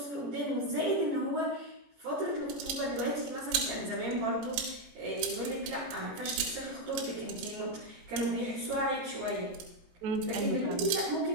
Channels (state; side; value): late; left; 18 ms